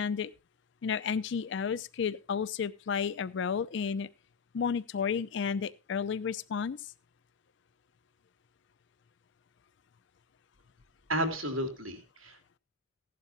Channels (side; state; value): right; quieter; 4.8 dB